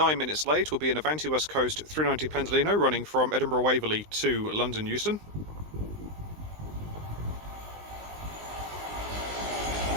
minutes late, will be an Avanti West Coast 390 Pendolino running from Edinburgh Waverley to London Euston.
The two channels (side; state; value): left; late; 19 ms